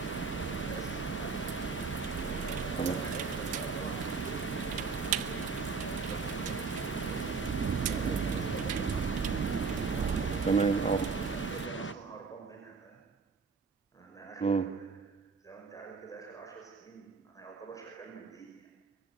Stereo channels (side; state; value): left; quieter; 4.9 dB